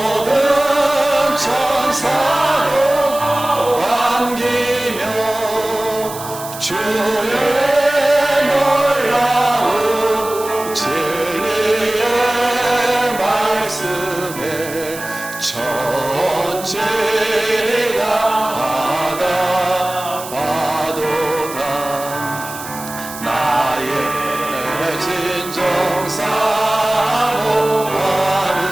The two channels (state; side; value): noise; right; hiss, 12 dB below the sound